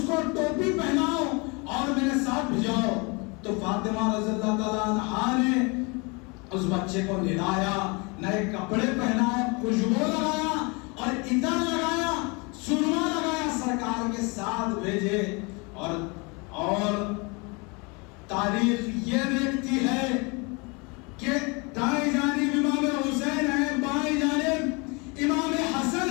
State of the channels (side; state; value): right; quieter; 29.7 dB